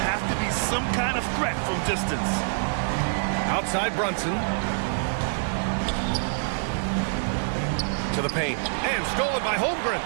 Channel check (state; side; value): silent; left; 61 dB below the other